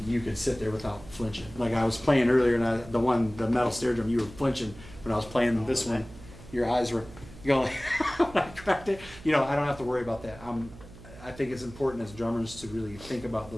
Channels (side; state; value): right; noise; hum, 18 dB below the sound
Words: you could sit there without flinching. Like I was playing earlier, and the metal snare drum, you were flinching when I was playing this one. Your eyes were going when I cracked it. I don't have to worry about that. I think it's important as drummers to really think about